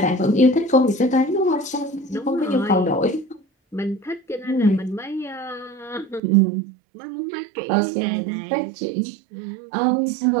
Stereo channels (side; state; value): left; drops out; at 6.2 s